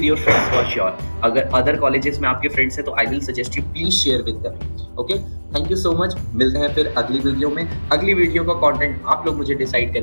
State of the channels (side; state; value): both; inverted; correlation -1.00